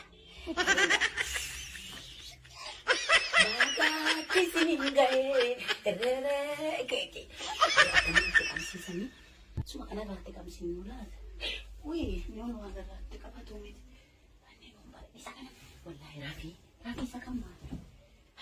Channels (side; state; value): both; identical; correlation 1.00